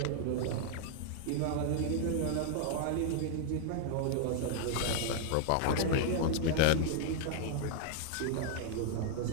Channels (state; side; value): different; both; correlation 0.00